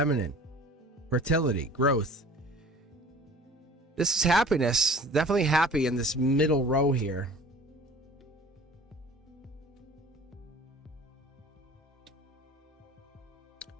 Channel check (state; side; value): normal; both; correlation 0.45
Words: fertility, growth. This is happiness, definitely happy in this middle row here.